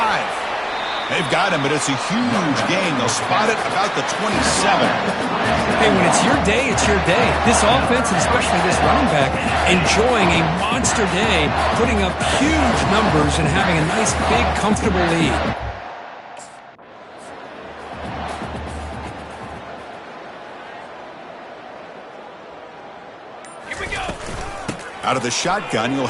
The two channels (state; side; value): identical; both; correlation 1.00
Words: They've got him, but it's a huge gain. They'll spot it about the 27. Hey, when it's your day, it's your day. This offense, and especially this running back, enjoying a monster day, putting up huge numbers and having a nice, big, comfortable lead. Here we go. Out of the shotgun, he'll